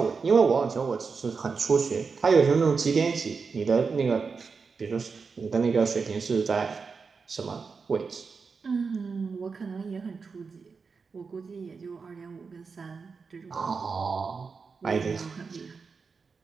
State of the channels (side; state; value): left; quieter; 5.1 dB